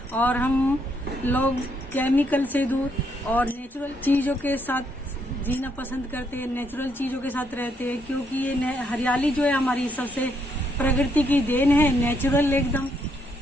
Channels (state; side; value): normal; both; correlation 0.74